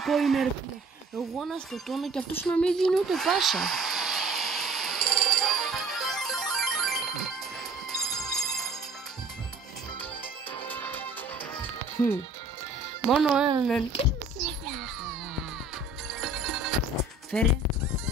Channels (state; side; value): quieter; left; 3.1 dB